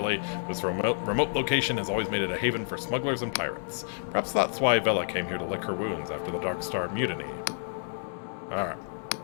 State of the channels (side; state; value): right; silent; 58 dB below the other